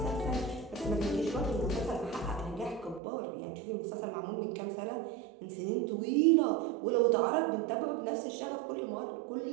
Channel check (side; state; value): left; drops out; at 3.0 s